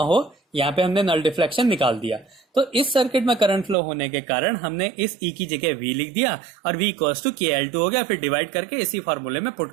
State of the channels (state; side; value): drops out; left; at 3.8 s